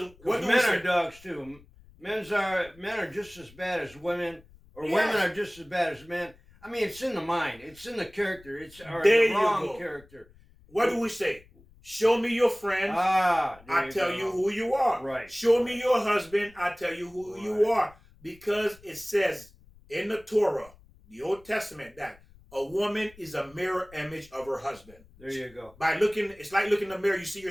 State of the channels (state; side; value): noise; left; rumble, 25 dB below the sound